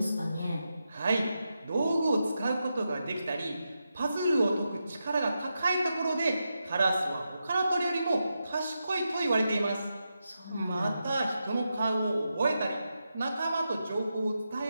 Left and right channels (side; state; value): both; inverted; correlation -0.87